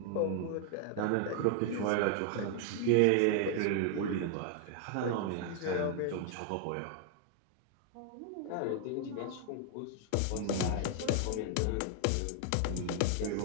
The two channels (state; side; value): different; both; correlation 0.00